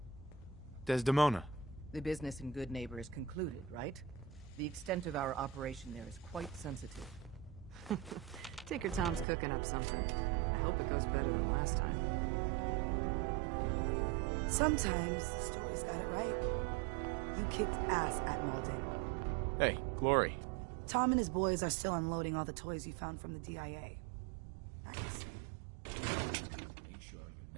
Desdemona. the business in Good Neighbor is concluded, right? The extent of our operation there is quite sensitive. Tinker Tom's cooking up something. I hope it goes better than last time. Sometimes the story's got it right. You kicked ass at Malden. Hey, Glory. Tom and his boys are still unloading all the toys you found from the DIA. Nice. Make sure you're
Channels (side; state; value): left; drops out; at 9.2 s